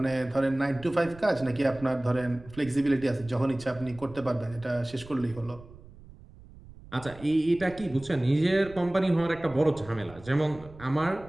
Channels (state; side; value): noise; right; rumble, 20 dB below the sound